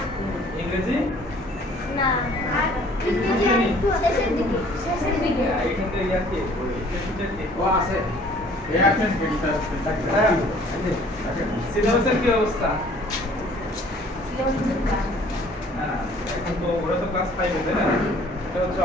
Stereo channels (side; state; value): both; normal; correlation 0.55